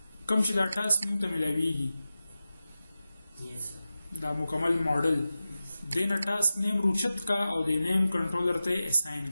کوم چې دا ټاسک موږ ته میلاویږي دا مکمل ماډل دې نه ټاسک نیم روچت کا او د نیم کنټرولر ته اساین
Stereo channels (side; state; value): both; inverted; correlation -0.94